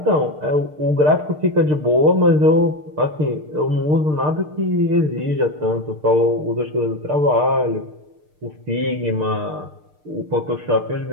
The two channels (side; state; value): left; late; 6.6 ms